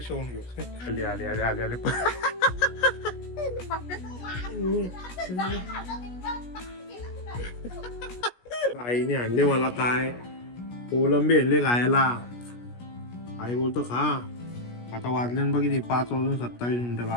होऊन घेऊ. आले आले आले आले आले आईने आणले मला काय कोलंबी आणले खायला. आई बोलतो खा. आता वाजले बघ 5:27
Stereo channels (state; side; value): late; right; 17 ms